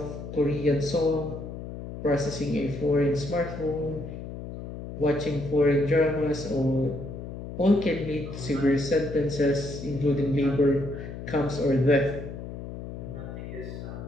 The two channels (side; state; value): left; noise; hum, 9 dB below the sound